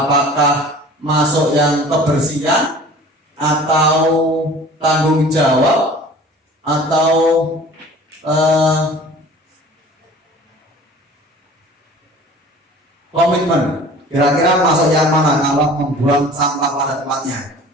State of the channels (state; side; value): normal; both; correlation 0.44